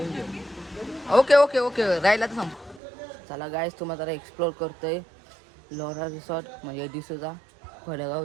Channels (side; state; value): left; drops out; at 2.8 s